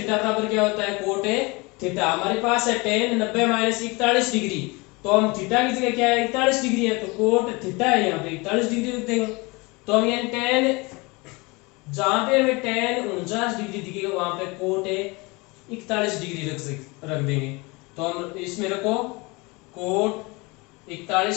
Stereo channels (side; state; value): right; quieter; 25.9 dB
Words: बराबर क्या होता है, कोट ए थीटा। हमारे पास है टेन 90 माइनस 41 डिग्री, तो हम थीटा की जगह क्या है 41 डिग्री है, तो कोट थीटा है यहाँ पे 41 डिग्री रख देंगे। तो हम यहाँ टेन, जहां पे हमें टेन 49 डिग्री दिखेगा वहां पे कोट ए 41 डिग्री रख देंगे। तो हम इसमें रखो कोट